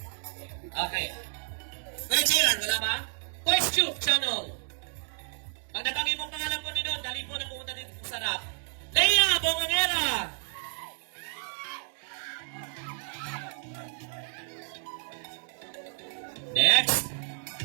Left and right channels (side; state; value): left; silent; 57 dB below the other